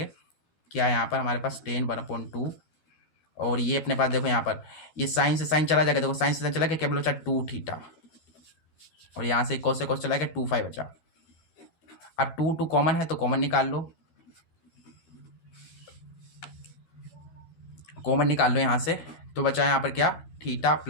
क्या यहाँ पर हमारे पास tan 1/2, और ये अपने पास देखो यहाँ पर ये साइन से साइन चला जाएगा, देखो साइन से साइन चला गया, केवल बचा 2 थीटा, और यहाँ से cos से cos चला गया, 2 बचा। अब 2 कॉमन है तो कॉमन निकाल लो, कॉमन निकाल लो यहाँ से, तो बचा यहाँ पर क्या, थीटा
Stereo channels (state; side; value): late; right; 13 ms